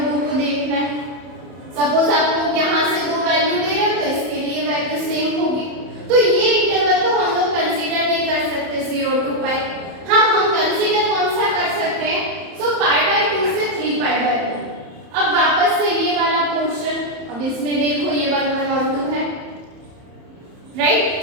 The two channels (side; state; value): left; late; 31 ms